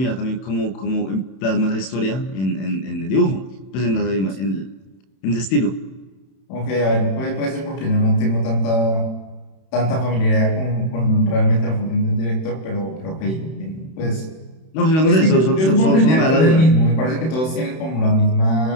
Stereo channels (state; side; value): late; right; 31 ms